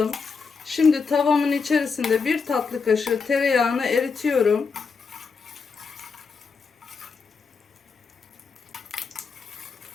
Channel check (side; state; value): right; quieter; 5.1 dB